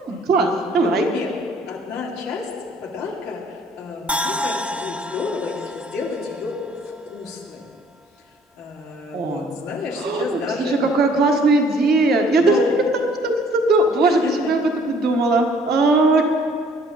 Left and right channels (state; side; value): normal; both; correlation 0.58